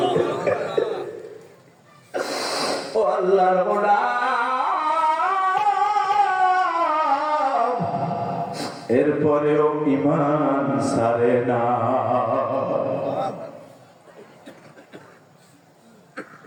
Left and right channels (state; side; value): identical; both; correlation 1.00